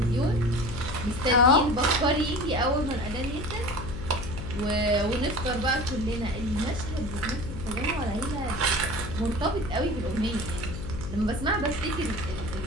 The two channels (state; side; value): noise; left; hum, 7 dB below the sound